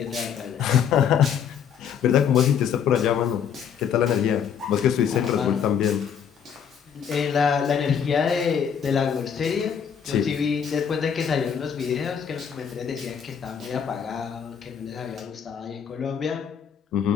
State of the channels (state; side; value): quieter; right; 7.8 dB